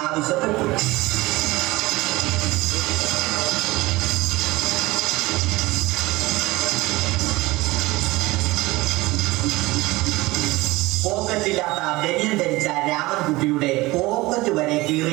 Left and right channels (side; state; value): left; quieter; 20.4 dB